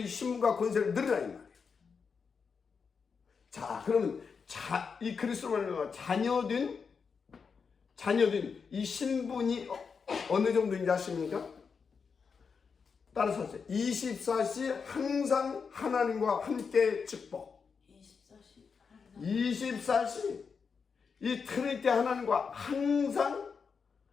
신분과 권세를 누리라 이 말이에요. 자, 그러면 이 그리스도로 자녀된 이 신분이 어느 정도인지 아십니까? 따라서 하세요. 24시 항상 하나님과 함께 축복. 24시 이 트리니티 하나님과 항상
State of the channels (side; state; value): right; quieter; 5.7 dB